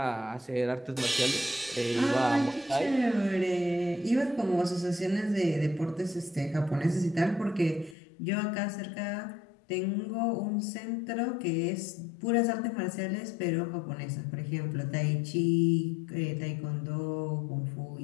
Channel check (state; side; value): drops out; right; at 8.0 s